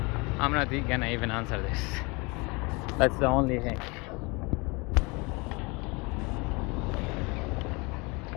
I'm not gonna even answer this. That's the only thing.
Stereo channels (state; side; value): quieter; right; 27.7 dB